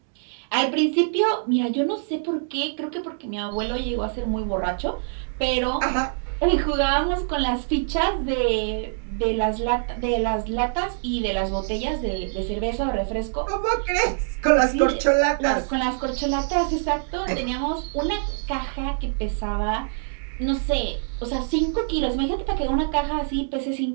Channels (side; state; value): left; silent; digital silence